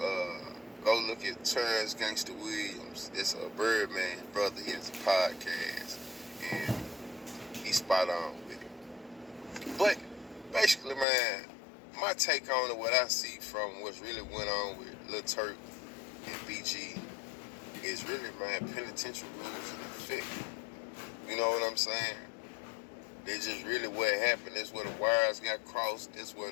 look at Terrence Gangsta Williams. That's a Birdman brother. He has a podcast, and he's spot on with it. But basically, man, my take on it, what I see from what's really went on with Lil Turk and BG is really, man, penitentiary rules in effect. You know what I'm saying? That's just really what happened. That's where the wires got crossed. That's where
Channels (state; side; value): drops out; right; at 11.1 s